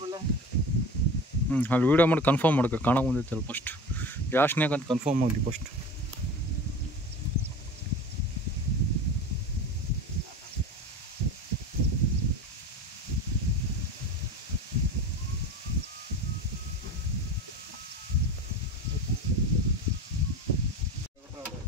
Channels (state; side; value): normal; both; correlation 0.34